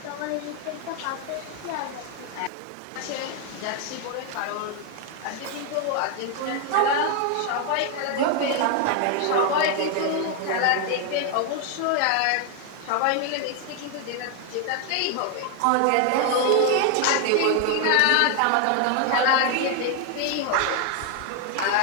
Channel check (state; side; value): different; both; correlation 0.01